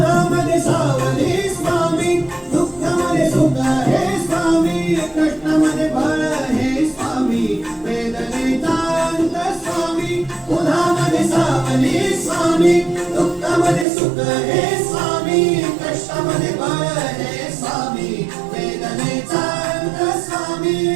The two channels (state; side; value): drops out; left; at 13.9 s